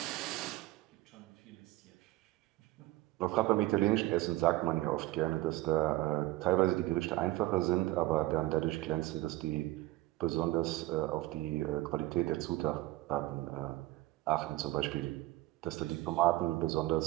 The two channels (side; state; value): left; quieter; 17.7 dB